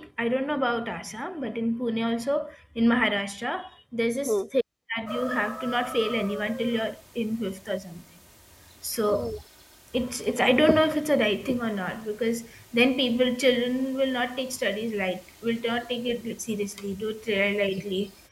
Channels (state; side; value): identical; both; correlation 1.00